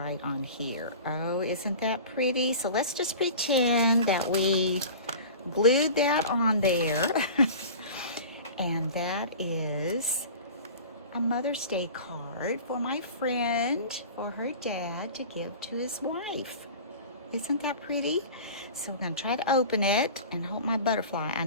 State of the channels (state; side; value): inverted; both; correlation -0.38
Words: on here. Oh, isn't that pretty? So let's just pretend that we glued that on there. And that is a Mother's Day card for my friend, for her dad to give to his wife. Isn't that pretty? So we're going to try to open it and hope my butterfly,